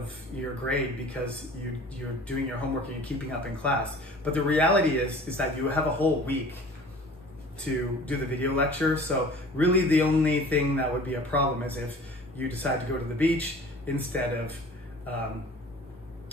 your grade because you're doing your homework and you're keeping up in class. But the reality is that you have a whole week to do the video lecture. So really the only thing that would be a problem is if you decide to go to the beach instead of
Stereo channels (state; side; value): normal; both; correlation 0.45